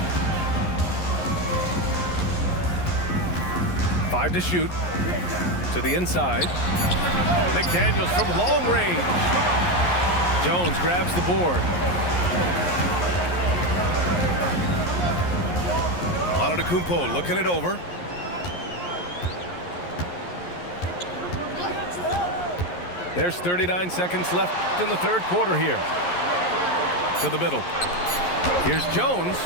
Five to shoot. To the inside. McDaniels from long range. Jones grabs the board. Antetokounmpo looking it over. There's 39 seconds left in the third quarter here. To the middle. Here's Jones.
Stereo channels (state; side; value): late; right; 11 ms